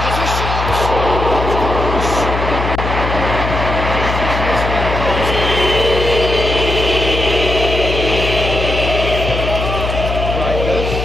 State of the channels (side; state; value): left; noise; hum, 3 dB below the sound